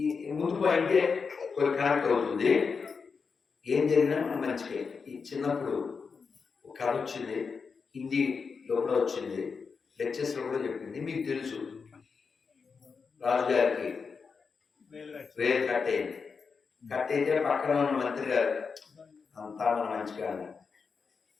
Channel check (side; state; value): right; quieter; 5.3 dB